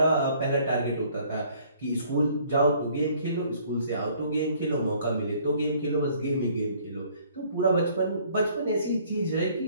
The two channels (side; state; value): both; inverted; correlation -0.59